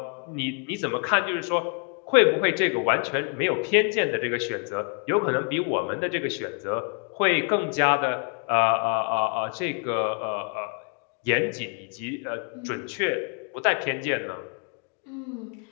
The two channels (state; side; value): quieter; right; 38.3 dB